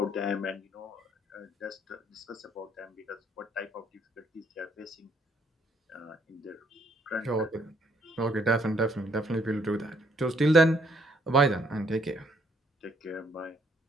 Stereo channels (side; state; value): both; normal; correlation 0.68